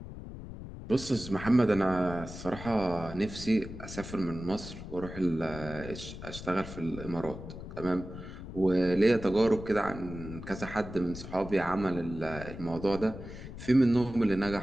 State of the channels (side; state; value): left; noise; rumble, 11 dB below the sound